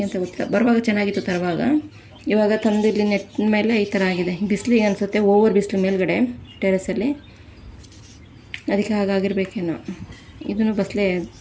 ಅಂತ ಗೊತ್ತಿಲ್ಲ. ಬರುವಾಗ ಚೆನ್ನಾಗಿತ್ತು ತರುವಾಗ. ಇವಾಗ ತಂದು ಇಲ್ಲಿ ನೆಟ್ಟಿನ ಮೇಲೆ ಈ ಥರ ಆಗಿದೆ. ಬಿಸಿಲಿಗೆ ಅನಿಸುತ್ತೆ, ಓವರ್ ಬಿಸಿಲು ಮೇಲ್ಗಡೆ ಟೆರೆಸಲ್ಲಿ, ಅದಕ್ಕೆ ಹಾಗಾಗಿರ್ಬೇಕೇನೋ. ಇದನ್ನು ಬಸಳೆ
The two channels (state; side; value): identical; both; correlation 1.00